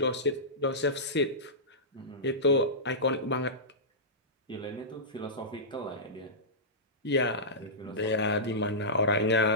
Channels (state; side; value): normal; both; correlation -0.17